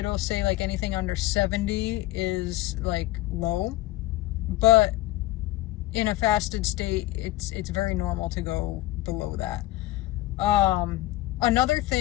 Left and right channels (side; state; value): right; quieter; 16.9 dB